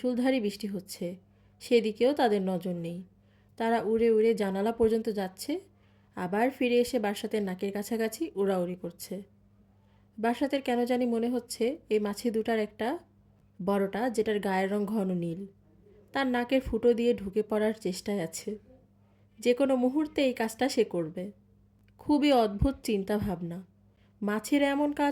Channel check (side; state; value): both; identical; correlation 1.00